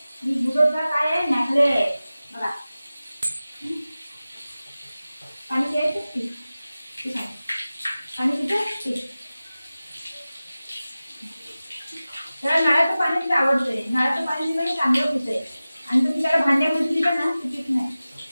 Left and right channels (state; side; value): inverted; both; correlation -0.96